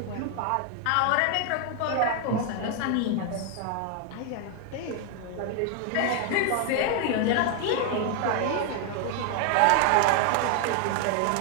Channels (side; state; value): both; different; correlation 0.00